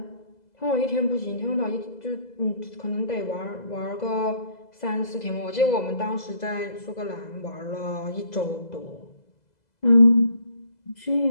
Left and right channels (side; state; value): right; late; 2.0 ms